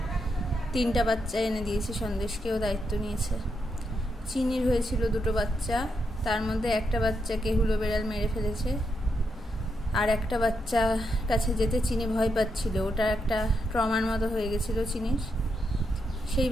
3টা বাচ্চা এনে দিয়েছি সন্দেশকেও দায়িত্ব নিয়েছে। চিনির হয়েছিল 2টো বাচ্চা, তার মধ্যে একটা বাচ্চাকে হুলো বেড়াল মেরে ফেলেছে। আর একটা বাচ্চা কাছে যেতে চিনি ভয় পাচ্ছিল, ওটা একটা ট্রমার মতো হয়ে গেছিল চিনির। সেই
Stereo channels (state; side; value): normal; both; correlation 0.82